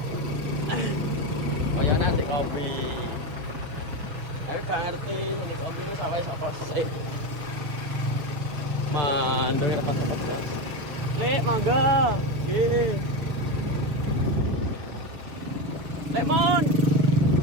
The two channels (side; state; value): left; late; 6.4 ms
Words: Oh ya nanti kopi. Gak ngerti ini kopi ini sampai apa sih? Mandeng rapat-rapat ya. Le, mangga. Nggih. Lemon.